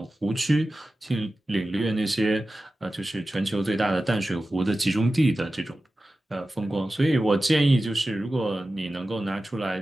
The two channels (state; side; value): normal; both; correlation 0.95